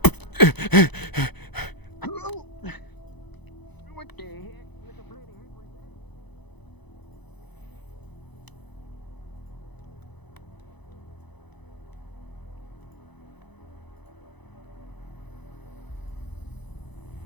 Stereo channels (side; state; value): right; late; 0.99 ms